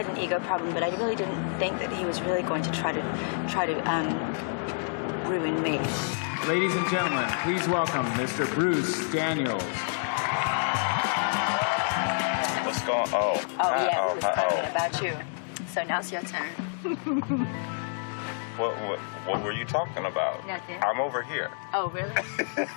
an ego problem, but I really didn't think that he was really going to try to ruin me. Ladies and gentlemen, please welcome Mr. Bruce Daniels. What's going on? Yeah, we was talking about you. So now's your turn. What were you talking about? Nothing. I'm over here. Oh, really?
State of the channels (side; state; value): right; silent; digital silence